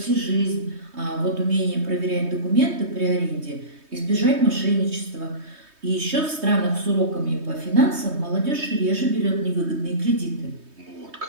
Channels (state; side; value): late; left; 3.2 ms